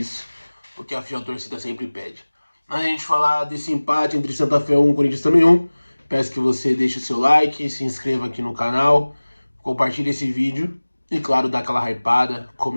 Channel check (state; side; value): inverted; both; correlation -1.00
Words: o que a fiel torcida sempre pede. Antes de a gente falar desse empate entre Santa Fé 1 e Corinthians também 1, peço que você deixe o seu like, se inscreva aqui no canal, compartilhe esse vídeo e, claro, dá aquela hypada,